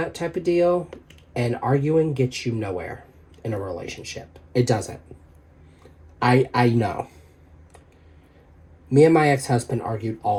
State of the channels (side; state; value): both; identical; correlation 1.00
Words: type of deal. And arguing gets you nowhere in a relationship. It doesn't. I know. Me and my ex-husband argued